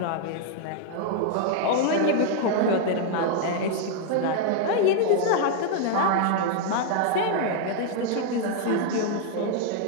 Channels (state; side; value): different; both; correlation 0.00